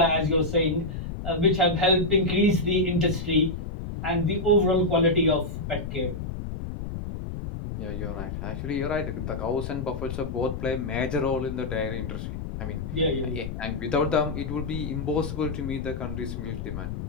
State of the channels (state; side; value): noise; left; rumble, 6 dB below the sound